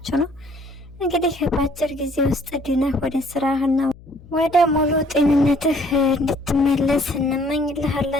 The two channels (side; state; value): left; noise; hum, 22 dB below the sound